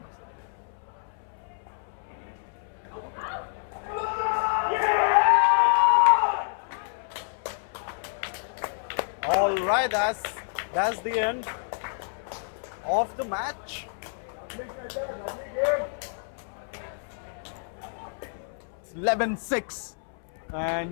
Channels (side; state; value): right; silent; 59 dB below the other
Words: All right, that's the end of the match. It's 11-6,